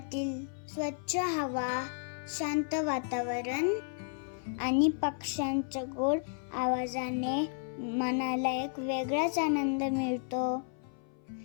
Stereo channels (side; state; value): right; silent; 56 dB below the other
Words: स्वच्छ हवा, शांत वातावरण आणि पक्ष्यांच्या गोड आवाजाने मनाला एक वेगळाच आनंद मिळतो.